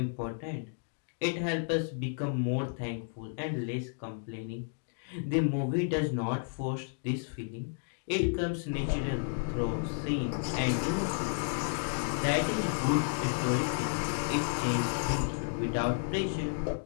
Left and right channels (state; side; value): silent; right; digital silence